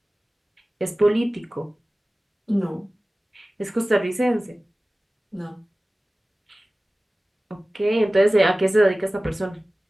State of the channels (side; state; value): both; normal; correlation 0.97